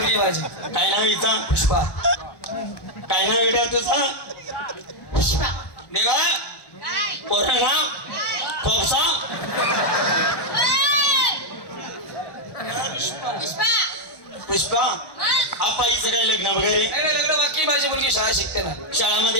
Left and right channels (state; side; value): late; right; 1.1 ms